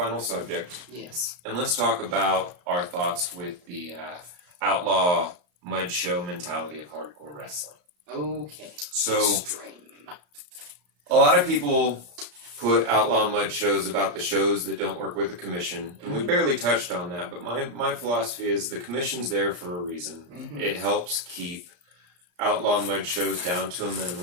subject. Yes. And let's talk about our thoughts with the outlaw mud show mentality of hardcore wrestling. Okay. So Extreme. a lot of people put outlaw mud shows about the shows that don't work with the commission, and we barely touched on that, but my philosophy is the commission's there for a reason. It helps keep outlaw mud shows down to a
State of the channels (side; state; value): left; late; 34 ms